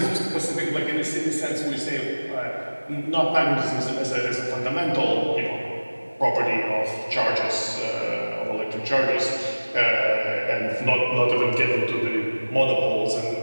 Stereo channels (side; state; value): both; inverted; correlation -1.00